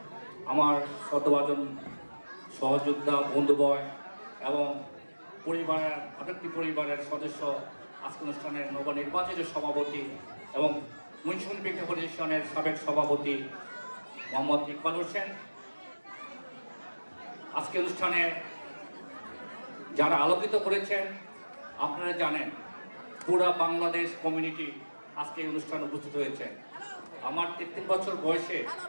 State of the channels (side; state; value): both; inverted; correlation -1.00